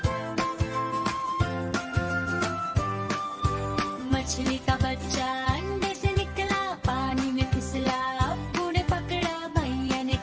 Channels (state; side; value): identical; both; correlation 1.00